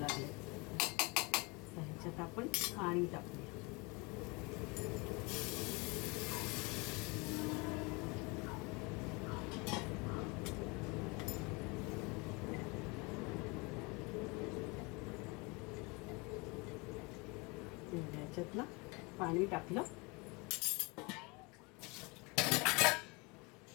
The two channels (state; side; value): quieter; right; 27.8 dB